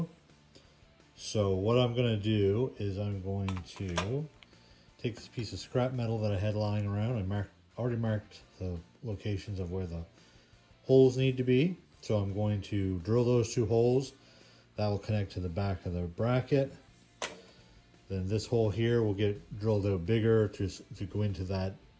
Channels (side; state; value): both; identical; correlation 1.00